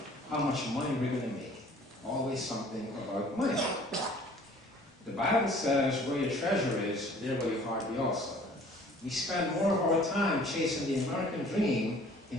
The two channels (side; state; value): both; normal; correlation 0.52